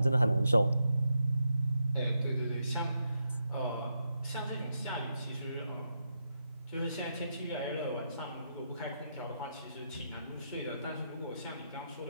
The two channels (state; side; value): inverted; both; correlation -0.84